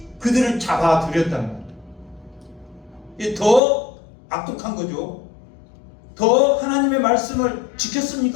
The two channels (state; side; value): drops out; right; at 3.6 s